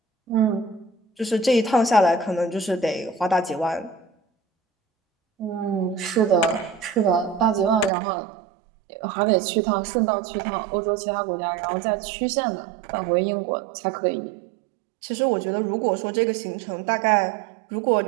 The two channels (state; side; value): drops out; left; at 7.9 s